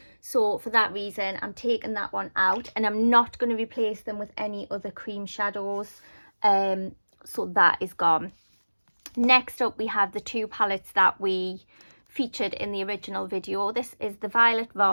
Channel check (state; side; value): inverted; both; correlation -1.00